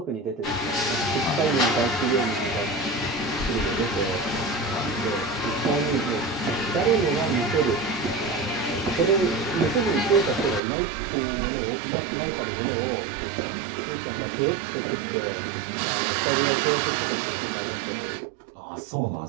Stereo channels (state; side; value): drops out; left; at 10.6 s